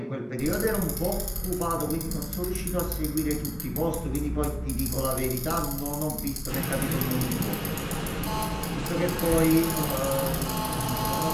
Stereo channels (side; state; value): both; identical; correlation 1.00